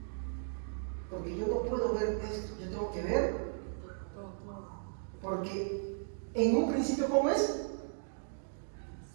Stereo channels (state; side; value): silent; left; digital silence